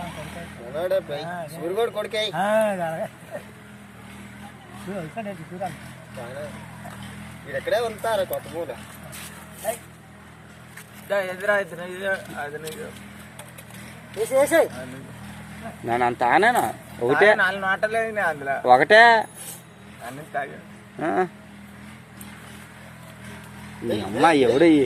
కొడుకే ఇక్కడే ఉంటారు కొత్త పూల నేను అంత ఆనేనా ఒకటే 4 మాటలేదు అందులో ఒకటే అన్ని తాగా అమ్మా ఎవడు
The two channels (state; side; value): identical; both; correlation 1.00